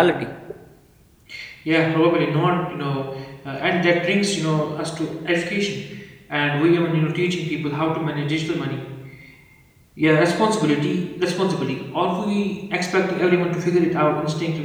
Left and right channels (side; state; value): both; identical; correlation 1.00